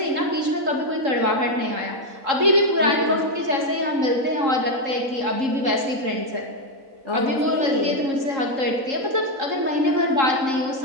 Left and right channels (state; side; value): late; left; 3.7 ms